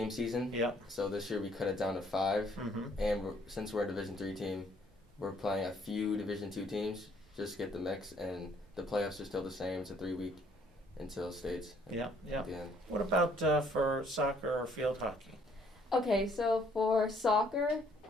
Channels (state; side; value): normal; both; correlation 0.64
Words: season, Yeah. so this year we cut it down to 5, Mm-hmm. and since we're a Division III team, we're playing a few Division II teams just to get the mix, and the playoffs are still the same. It's a 3-week until states Yeah, yeah. at the end. What about for soccer or field hockey? Okay, so for soccer,